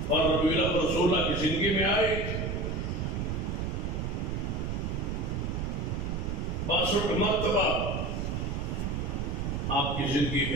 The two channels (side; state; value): right; noise; rumble, 2 dB below the sound